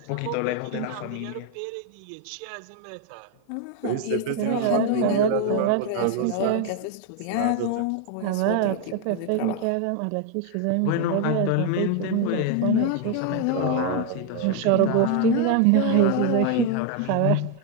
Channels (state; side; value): different; both; correlation 0.01